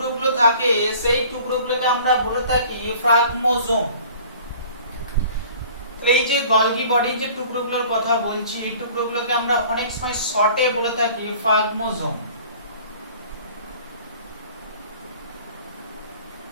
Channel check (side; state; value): both; inverted; correlation -0.48